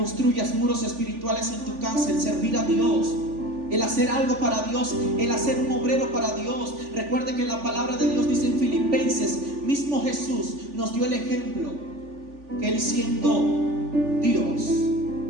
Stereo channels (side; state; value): left; late; 3.5 ms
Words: muros espirituales en tu casa. El servir a Dios, el hacer algo para Dios, el hacer un obrero para Dios. Recuerde que la palabra de Dios dice en Filipenses, mismo Jesús nos dio el ejemplo, que Él siendo